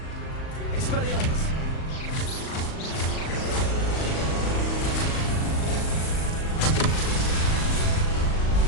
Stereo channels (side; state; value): right; late; 38 ms